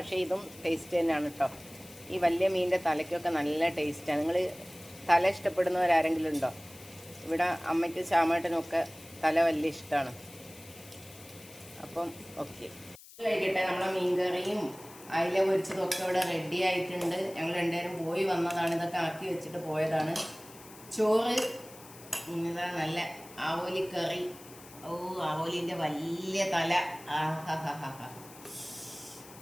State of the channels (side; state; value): left; noise; hiss, 19 dB below the sound